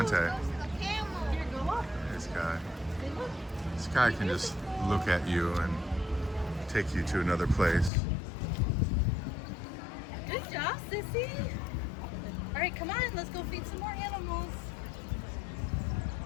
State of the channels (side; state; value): right; drops out; at 7.9 s